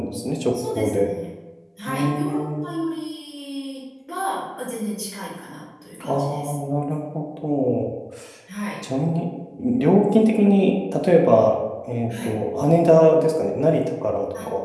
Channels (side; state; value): both; identical; correlation 1.00